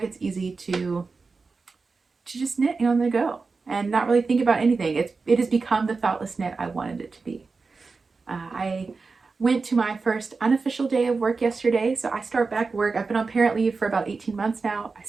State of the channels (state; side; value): quieter; left; 4.3 dB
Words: It's easy to just knit on the go and not really think about anything. It has become the thoughtless knit I wanted it to be. I went to my first unofficial day of work yesterday, so I start back work. I've been on parent leave for about 18 months now. I